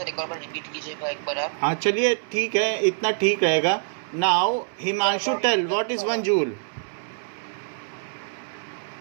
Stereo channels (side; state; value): left; silent; 62 dB below the other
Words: एक बार रिपीट कीजिएगा एक बार आप. हाँ चलिए ठीक है, इतना ठीक रहेगा. Now Himanshu tell what is 1 joule.